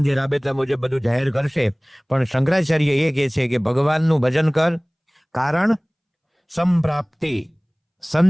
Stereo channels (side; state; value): both; identical; correlation 1.00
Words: રાબેતા મુજબ બધું જાહેર કરશે. પણ શંકરાચાર્ય એ કહે છે કે ભગવાનનું ભજન કર, કારણ સંપ્રાપ્તે